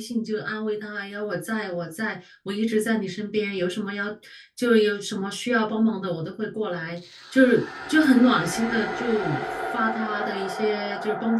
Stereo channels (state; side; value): identical; both; correlation 1.00